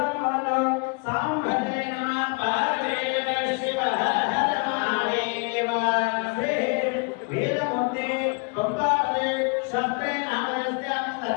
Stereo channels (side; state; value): right; quieter; 34.9 dB